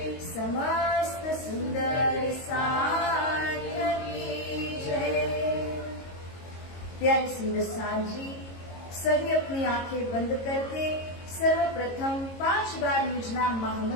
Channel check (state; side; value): late; right; 22 ms